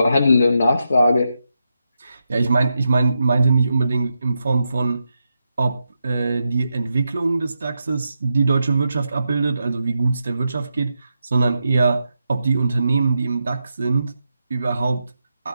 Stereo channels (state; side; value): inverted; both; correlation -0.86